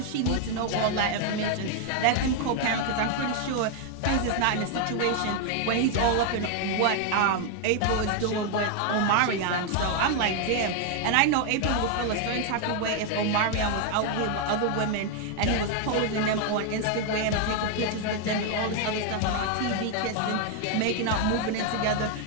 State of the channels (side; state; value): both; different; correlation 0.00